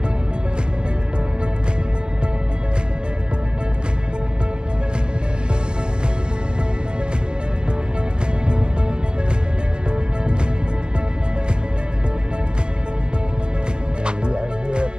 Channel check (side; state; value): left; late; 0.046 ms